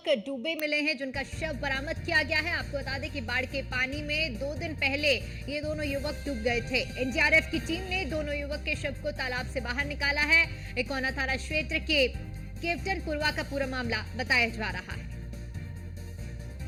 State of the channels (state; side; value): identical; both; correlation 1.00